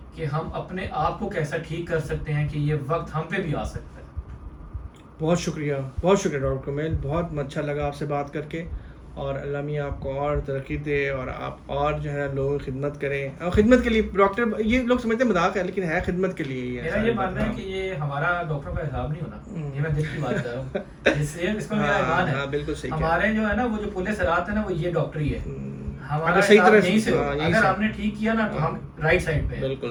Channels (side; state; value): both; identical; correlation 1.00